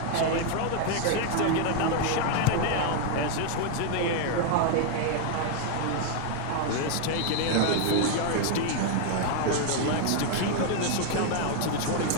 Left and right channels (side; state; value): both; different; correlation 0.00